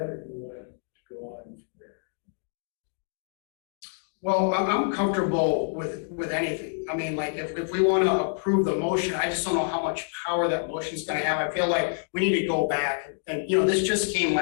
or do you want to go on from there? Well, I'm comfortable with anything. I mean, like, if we want to approve the motion, I just don't know how much power that motion's gonna have. I feel like we need to go back and, this just came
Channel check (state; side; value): silent; right; digital silence